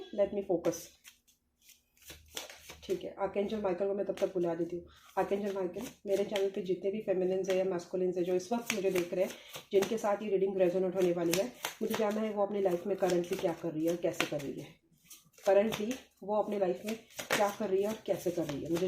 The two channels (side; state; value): both; identical; correlation 1.00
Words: लेट मी फोकस, ठीक है। आर्कएंजल माइकल को मैं तब तक बुला देती हूँ। आर्कएंजल माइकल, मेरे चैनल पे जितने भी फेमिनिन्स है या मैस्कुलिन्स है जो इस वक्त मुझे देख रहे हैं, जिनके साथ ये रीडिंग रेजोनेट होने वाली है, मुझे जानना है वो अपनी लाइफ में करंटली क्या कर रही है और कैसे कर रही है। करंटली वो अपनी लाइफ में क्या कर रही है और कैसे कर रही है,